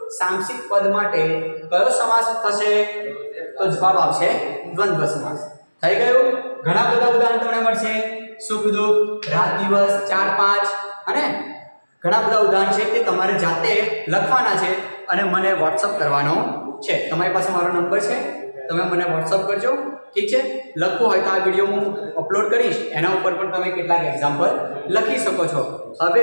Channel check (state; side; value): inverted; both; correlation -1.00